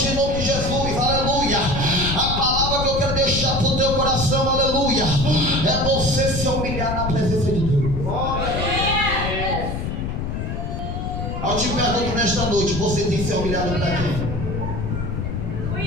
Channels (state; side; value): noise; left; rumble, 4 dB below the sound